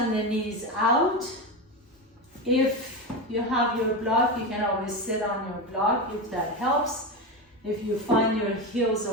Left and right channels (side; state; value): both; normal; correlation 0.17